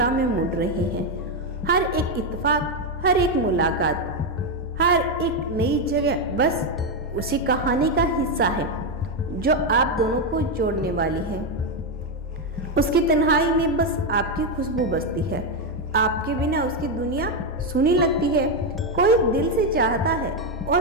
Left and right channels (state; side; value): normal; both; correlation 0.06